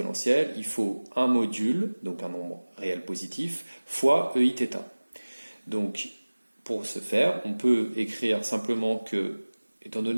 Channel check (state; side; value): inverted; both; correlation -1.00